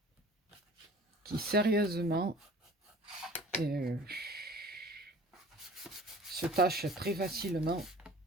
qui, sérieusement, se tachent très facilement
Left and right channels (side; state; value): both; normal; correlation 0.46